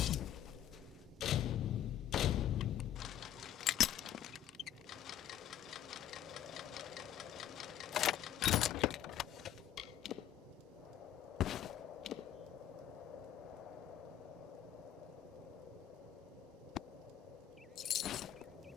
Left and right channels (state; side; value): quieter; right; 11.1 dB